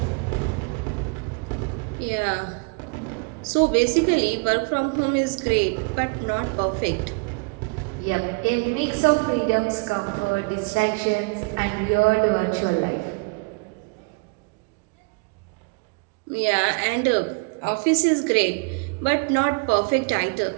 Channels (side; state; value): left; quieter; 31.8 dB